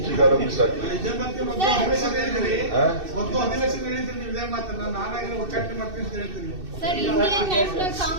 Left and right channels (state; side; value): late; left; 2.6 ms